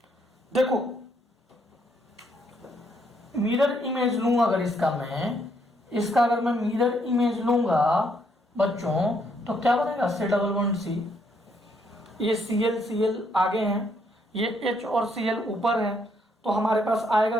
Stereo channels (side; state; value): both; normal; correlation 0.72